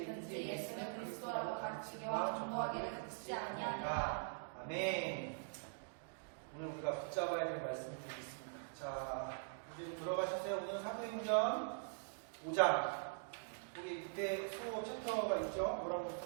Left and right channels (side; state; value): left; silent; digital silence